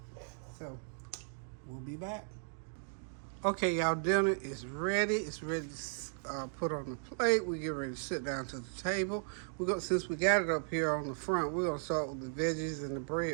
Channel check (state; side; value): silent; left; digital silence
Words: so we'll be back. Okay, y'all, dinner is ready. It's ready to put on the plate. We get ready to sit down to the table. Since we got it up here on the front, we're gonna start with the veggies and the